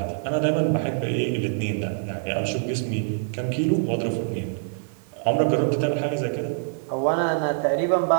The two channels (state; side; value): silent; left; digital silence